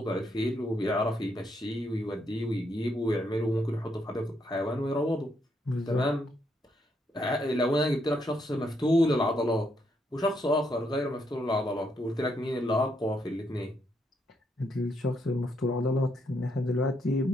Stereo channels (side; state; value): both; normal; correlation 0.76